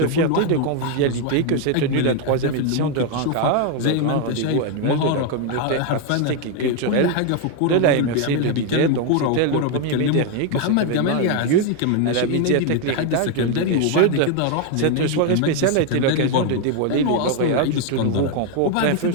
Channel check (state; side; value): different; both; correlation 0.01